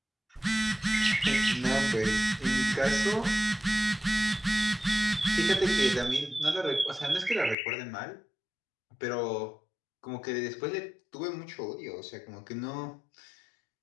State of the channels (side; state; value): right; drops out; at 7.6 s